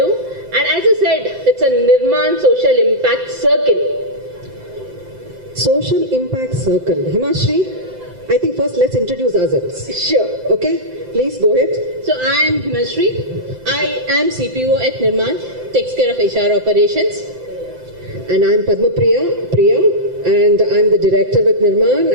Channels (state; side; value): late; left; 7.8 ms